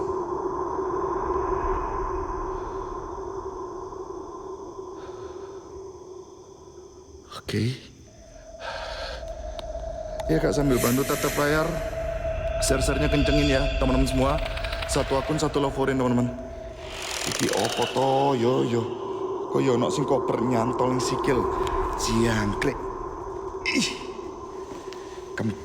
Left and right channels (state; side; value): identical; both; correlation 1.00